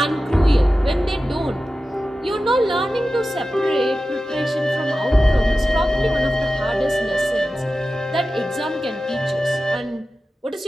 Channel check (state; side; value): normal; both; correlation 0.94